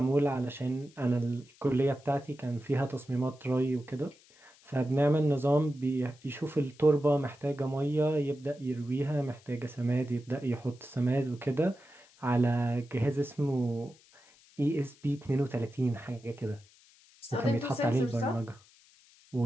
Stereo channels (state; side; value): noise; left; hiss, 28 dB below the sound